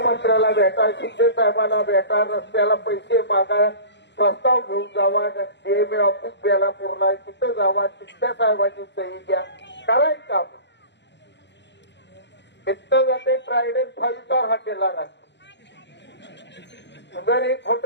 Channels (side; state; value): right; late; 0.51 ms